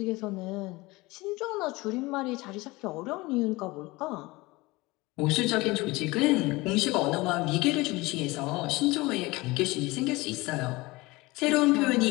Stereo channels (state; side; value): quieter; right; 22.0 dB